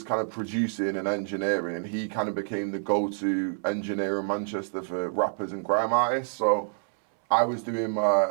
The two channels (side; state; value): left; silent; 60 dB below the other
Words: kind of producing and engineering, and he kind of became the go-to engineer in Manchester for rappers and grime artists. So I was doing